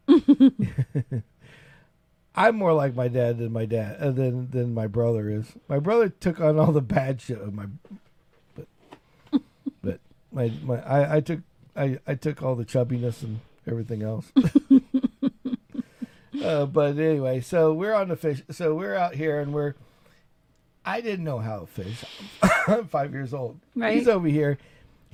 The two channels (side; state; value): both; identical; correlation 1.00